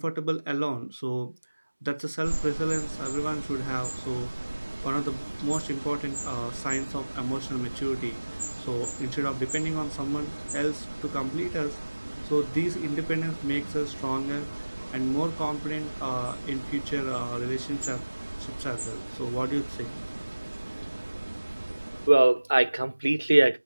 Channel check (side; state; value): both; inverted; correlation -1.00